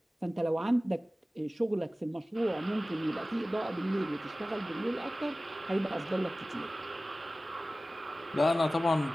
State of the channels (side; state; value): both; normal; correlation 0.97